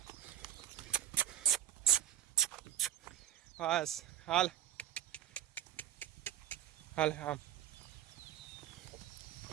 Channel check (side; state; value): left; quieter; 11.5 dB